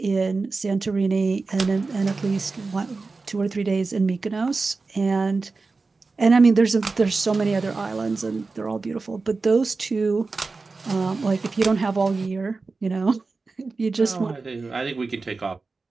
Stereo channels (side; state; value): left; quieter; 4.0 dB